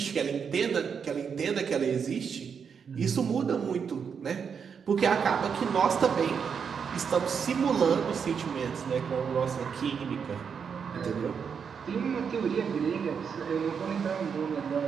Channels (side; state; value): left; quieter; 6.6 dB